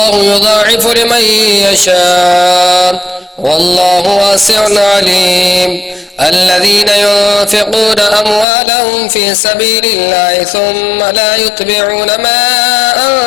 يضاعف لمن يشاء والله واسع عليم. الذين ينفقون أموالهم في سبيل الله ثم لا يتبعون ما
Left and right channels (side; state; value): right; drops out; at 8.5 s